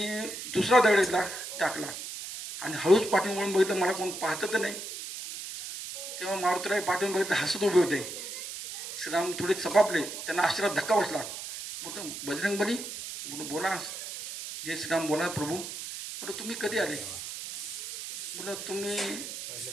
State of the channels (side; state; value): right; noise; hiss, 8 dB below the sound